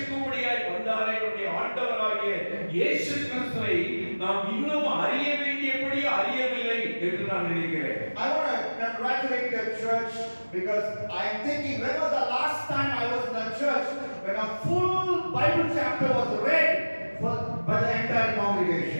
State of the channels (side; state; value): both; inverted; correlation -1.00